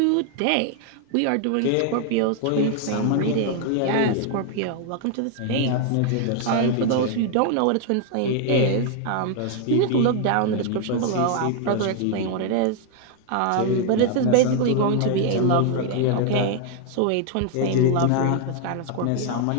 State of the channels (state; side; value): different; both; correlation 0.00